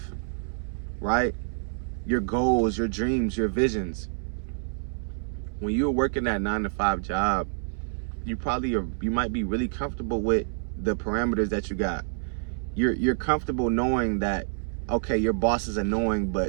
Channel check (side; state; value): left; silent; 60 dB below the other